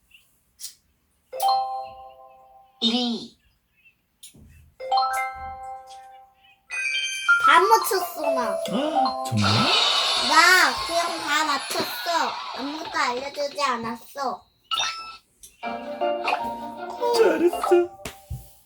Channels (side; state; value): both; identical; correlation 1.00